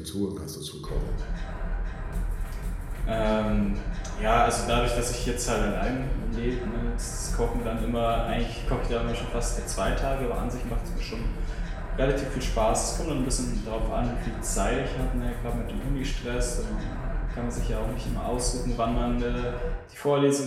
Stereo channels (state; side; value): identical; both; correlation 1.00